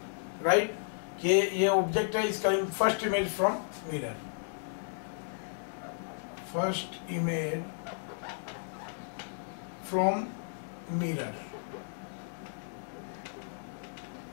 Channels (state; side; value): silent; right; digital silence